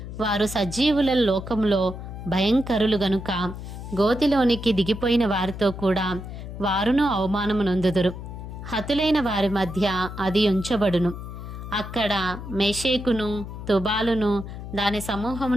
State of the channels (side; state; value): left; noise; hum, 10 dB below the sound